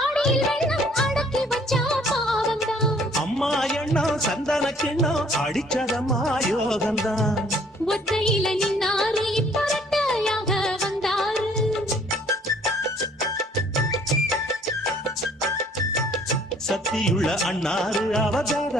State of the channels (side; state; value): both; normal; correlation 0.59